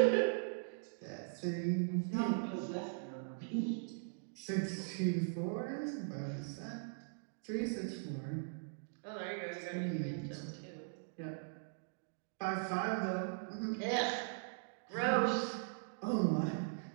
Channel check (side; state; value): left; silent; digital silence